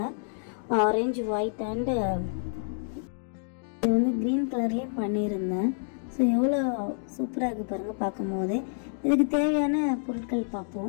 ஆரஞ்சு, ஒயிட் அண்டு இது வந்து க்ரீன் கலர்லேயே பண்ணியிருந்தேன். ஸோ எவ்வளோ சூப்பராக இருக்குது பாருங்கள் பார்க்கும் போதே. இதுக்கு தேவையான பொருட்கள்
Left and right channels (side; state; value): right; silent; digital silence